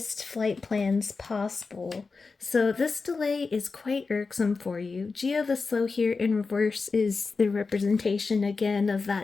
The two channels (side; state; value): right; quieter; 4.4 dB